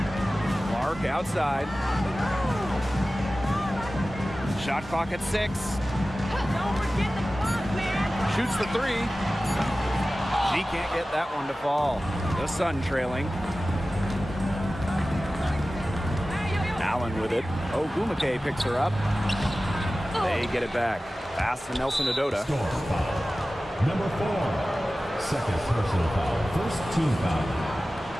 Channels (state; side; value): normal; both; correlation 0.96